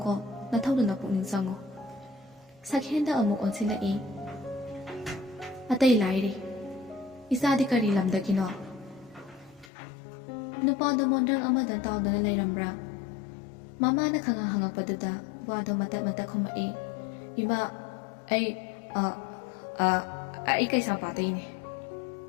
ꯅꯊꯧꯗꯨꯅ ꯄꯨꯛꯅꯤꯡ ꯆꯪꯉꯨ." ꯁꯛꯍꯦꯟꯗ ꯑꯃꯨꯛ ꯑꯣꯟꯁꯤꯜꯂꯛꯏ, "ꯑꯇꯩ ꯂꯥꯏꯔꯤ, ꯏꯆꯥꯗꯤ ꯀꯔꯤ ꯂꯝꯗꯒꯤꯅꯣ?" ꯅꯨꯄꯥꯗꯣ ꯃꯣꯟꯗ꯭ꯔꯪ ꯑꯃꯗ ꯇꯥꯎꯗꯨꯅ ꯂꯩꯔꯝꯕ꯭ꯔꯥ? ꯃꯃꯥꯅ ꯍꯪꯉꯛꯄꯗꯨꯗ ꯋꯥꯗꯣ ꯃꯇꯠ ꯃꯇꯠ ꯈꯨꯝꯃꯛꯏ, "ꯏꯃꯥ, ꯑꯩ ꯀꯩꯁꯥꯝꯄꯥꯠꯇꯩꯅꯦ."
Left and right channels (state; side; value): drops out; right; at 9.7 s